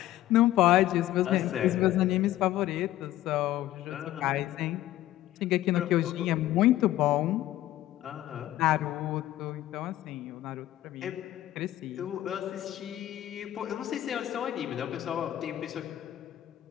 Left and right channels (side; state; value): right; quieter; 14.3 dB